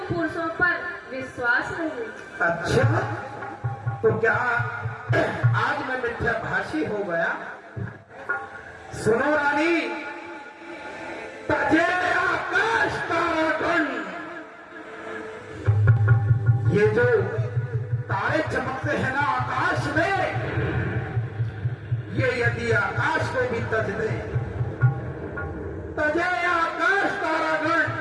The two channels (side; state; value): both; identical; correlation 1.00